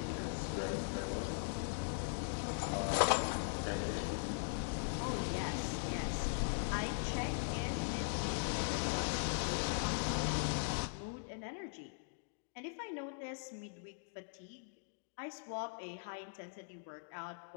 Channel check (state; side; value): silent; right; digital silence